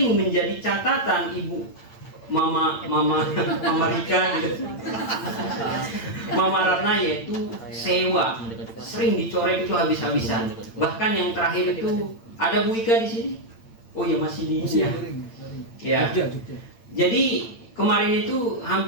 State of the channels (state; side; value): late; right; 8.8 ms